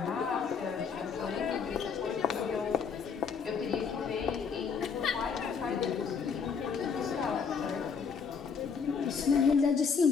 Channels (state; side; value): quieter; right; 6.0 dB